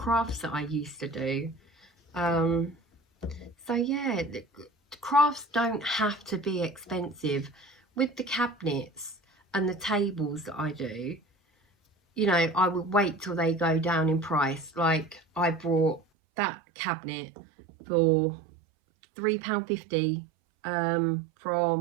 that I used to do. So yeah, the crafts don't have to be expensive. With the cabinets and the tables that I do, you know, I would wait till they go down in price. Like, I bought that cabinet for £3.50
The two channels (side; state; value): left; drops out; at 16.0 s